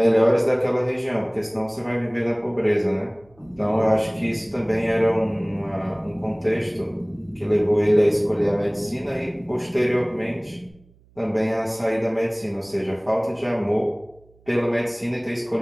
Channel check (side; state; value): right; noise; hum, 30 dB below the sound